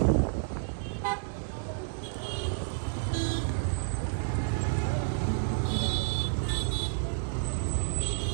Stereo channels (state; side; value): silent; left; digital silence